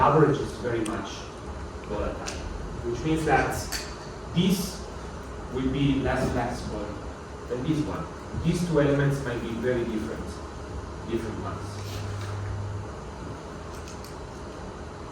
average is very much volatile. Which means that this will be less flexible than this one. These two elements might be very different ones.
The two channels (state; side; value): identical; both; correlation 1.00